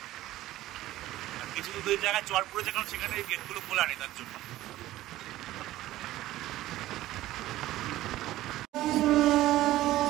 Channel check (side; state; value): left; quieter; 15.4 dB